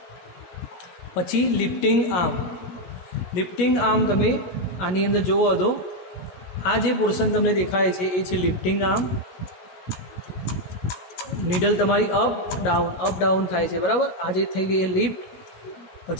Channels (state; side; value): late; right; 17 ms